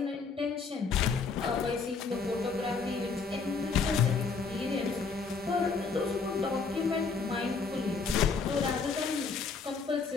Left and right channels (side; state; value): right; quieter; 4.8 dB